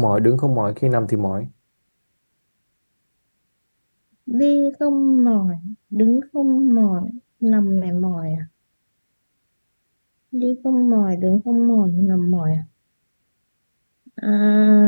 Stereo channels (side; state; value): both; inverted; correlation -1.00